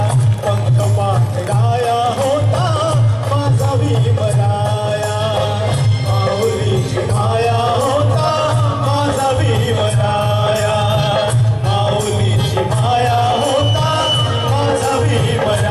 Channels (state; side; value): identical; both; correlation 1.00